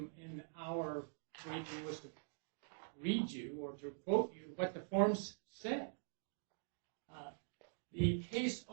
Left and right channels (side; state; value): left; silent; digital silence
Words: our briefing was to read you or to quote you what the forms said. The case